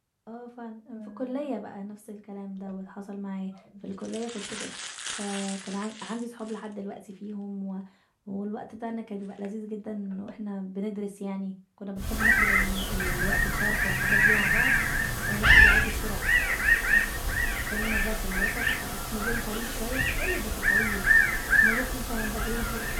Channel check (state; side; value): identical; both; correlation 1.00